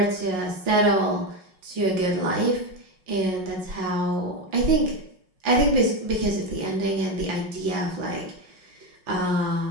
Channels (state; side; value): late; left; 5.5 ms